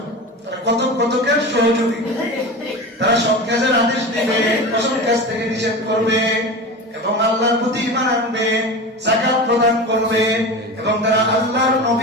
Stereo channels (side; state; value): both; normal; correlation 0.28